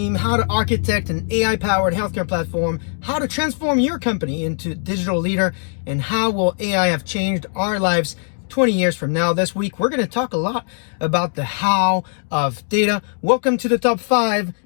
how to architect an AI-powered healthcare platform, how to transform your company into digital leader, and how will AI have changed our lives 20 years from now. This week, we're going to talk a lot about the how of data. Welcome to the top 5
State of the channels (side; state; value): right; silent; 66 dB below the other